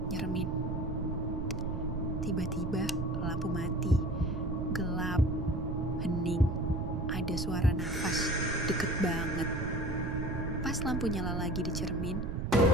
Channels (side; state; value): right; noise; rumble, 3 dB below the sound